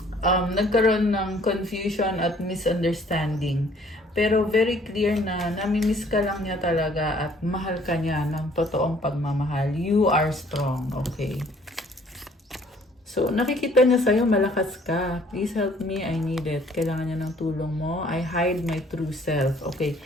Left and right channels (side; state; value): both; normal; correlation 0.59